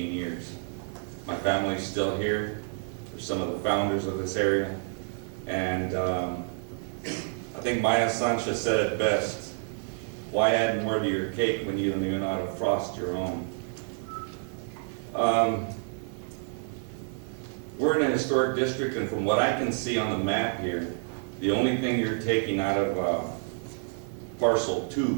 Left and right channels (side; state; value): left; silent; 57 dB below the other